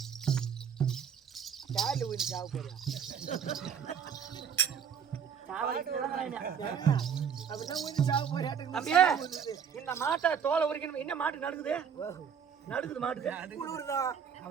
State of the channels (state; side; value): quieter; left; 7.5 dB